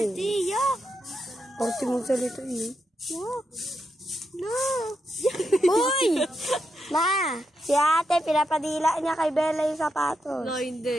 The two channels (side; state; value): both; normal; correlation 0.84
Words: Yuck! Parti mong salito eh. Yuck! No! Uy! Ma! Si ate, pinapadila niya kay Bella yung sapatos. No,